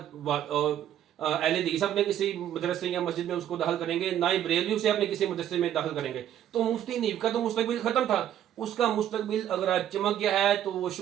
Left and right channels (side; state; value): left; quieter; 11.0 dB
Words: اہل حدیث اپنے کسی مدرسے یا مسجد میں اس کو داخل کریں گے، نہ ہی بریلوی سے اپنے کسی مدرسے میں داخل کریں گے۔ تو مفتی حنیف کا تو مستقبل ختم تھا، اس کا مستقبل اگر آج چمک گیا ہے تو وہ